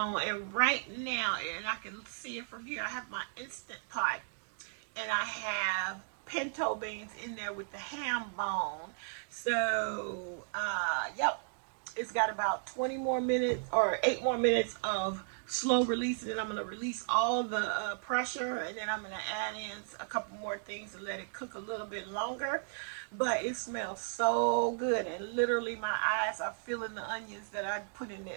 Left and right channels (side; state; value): left; silent; digital silence